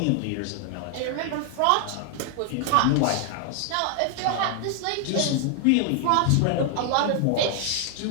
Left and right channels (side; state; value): both; different; correlation 0.00